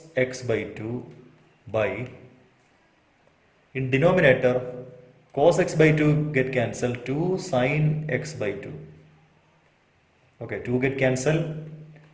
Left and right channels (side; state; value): both; identical; correlation 1.00